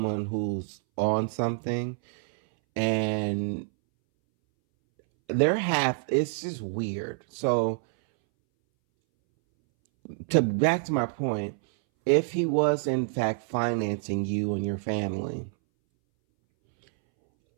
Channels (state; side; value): silent; left; 60 dB below the other